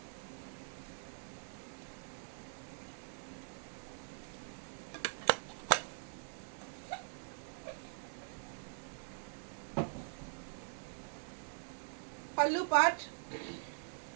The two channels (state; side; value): silent; left; digital silence